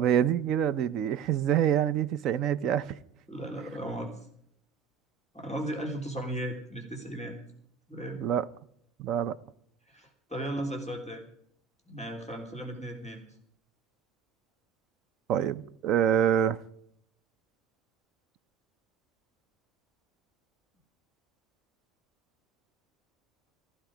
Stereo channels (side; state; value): left; quieter; 7.8 dB